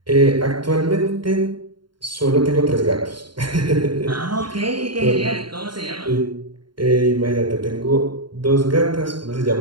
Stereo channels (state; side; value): late; left; 0.72 ms